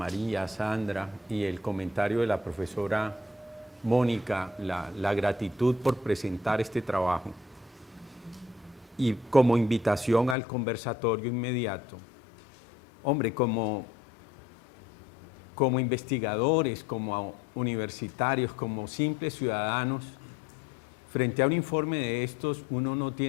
a Sandra, y el comentario de la profesora Mónica, la gratitud por presentar este trabajo, y como invitación al conversatorio inmediato. Hombre, como investigadores, como universitarios, como simples ciudadanos, frente a un informe de estos, uno no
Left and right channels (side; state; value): right; drops out; at 10.4 s